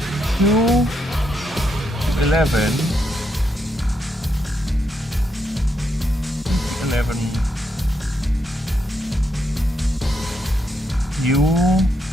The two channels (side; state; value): both; normal; correlation 0.80